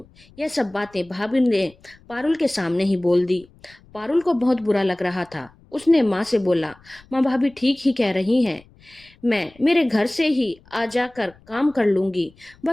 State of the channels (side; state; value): left; noise; rumble, 28 dB below the sound